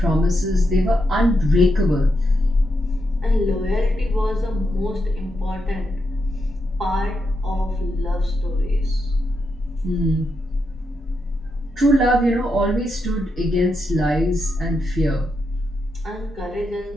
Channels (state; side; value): normal; both; correlation 0.83